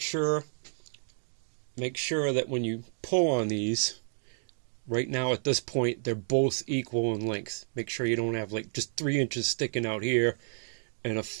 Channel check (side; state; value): left; silent; 57 dB below the other